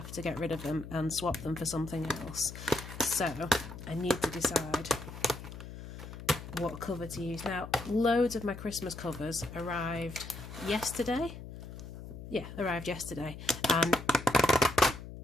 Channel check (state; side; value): noise; left; hum, 12 dB below the sound